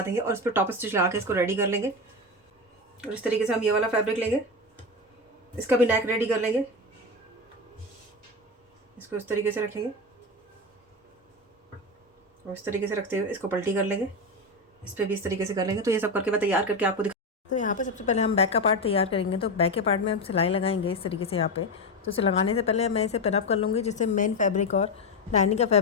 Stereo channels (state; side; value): normal; both; correlation 0.16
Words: देंगे और इस पर टॉप स्टिच लगा के इसको रेडी कर लेंगे। और इस तरीके से हम ये वाला फैब्रिक लेंगे, इसका भी नेक रेडी कर लेंगे। इसको इस तरीके से रखेंगे और इस तरीके से रखते हुए इसको पलटी कर लेंगे। इस पर भी इस तरीके से कर लेंगे। तो ये सब करके मैं तैयार करके आपको तो यहाँ पे सबसे पहले हम बैक का पार्ट तैयार करेंगे। तो बैक के पार्ट में हम सिलाई लगाएंगे इस तरीके से यहाँ पे। तो इसे लगाने से पहले मैं इसे पिनअप कर लूँगी, जिससे मेन फैब्रिक और लाइनिंग का